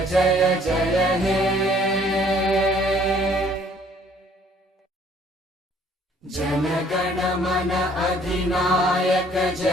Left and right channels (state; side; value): normal; both; correlation 0.59